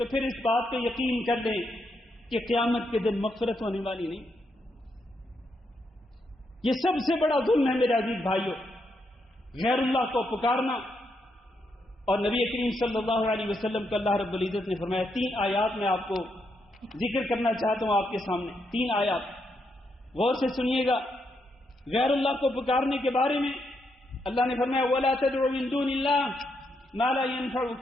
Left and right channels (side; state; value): both; normal; correlation 0.80